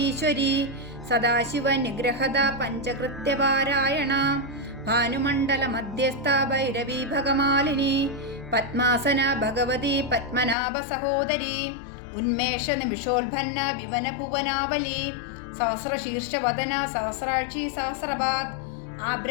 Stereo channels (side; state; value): right; drops out; at 10.6 s